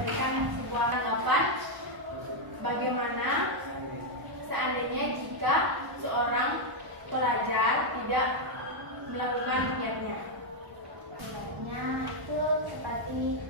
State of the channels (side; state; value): left; late; 1.0 ms